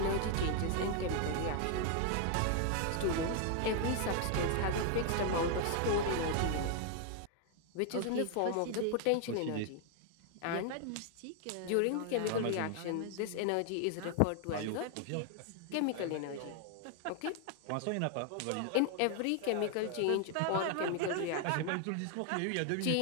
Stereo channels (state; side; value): different; both; correlation 0.00